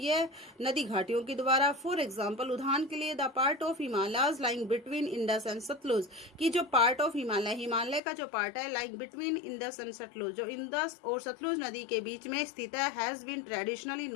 नदी घाटियों के द्वारा। फॉर एग्जाम्पल, उदाहरण के लिए the part of Himalayas lying between Indus and Sutlej, कि जो पार्ट ऑफ हिमालय का जो पार्ट है like between Indus and Sutlej, जो इंडस और सतलुज नदी के बीच में स्थित है, has been traditionally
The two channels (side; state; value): right; drops out; at 8.0 s